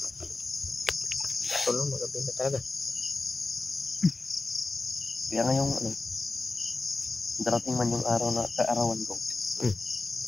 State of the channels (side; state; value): right; quieter; 3.5 dB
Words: Tolo, magabi na talaga. Kaya ngayong darating man yung araw na kaarawan ko.